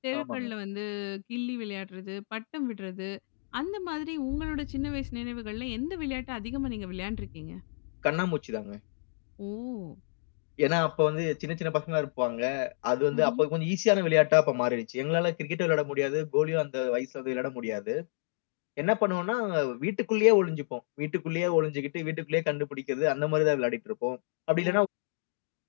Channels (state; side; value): silent; right; digital silence